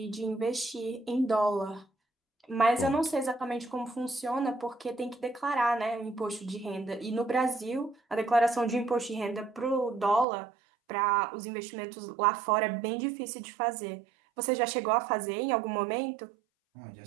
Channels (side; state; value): left; drops out; at 10.2 s